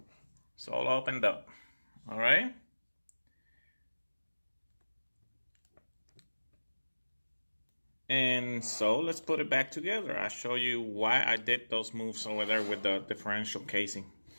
It's all opened up. All right. And so let's put it back together. I'll show you why I did those moves over there with the differential casing.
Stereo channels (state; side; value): inverted; both; correlation -1.00